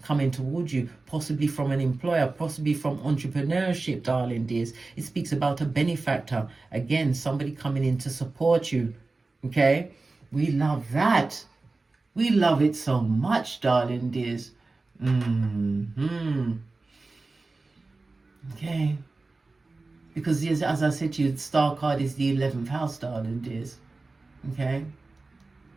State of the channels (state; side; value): quieter; left; 3.5 dB